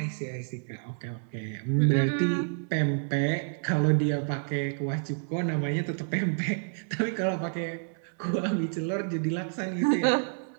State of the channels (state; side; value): silent; left; digital silence